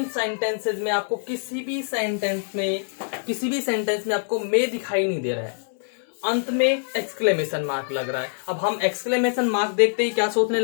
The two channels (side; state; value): right; silent; digital silence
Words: सेंटेंसेस में आपको किसी भी सेंटेंस में आपको मे दिखाई नहीं दे रहा है, अंत में एक्सक्लेमेशन मार्क लग रहा है। अब हम एक्सक्लेमेशन मार्क देखते ही क्या सोचने